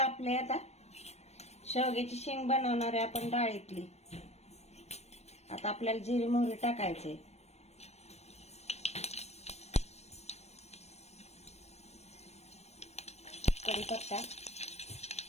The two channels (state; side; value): late; right; 0.31 ms